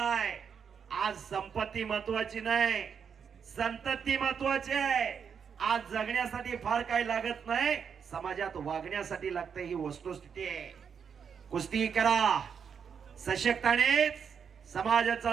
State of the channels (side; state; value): left; quieter; 6.9 dB